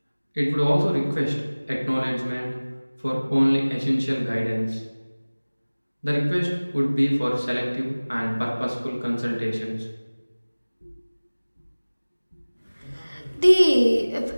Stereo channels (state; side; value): inverted; both; correlation -1.00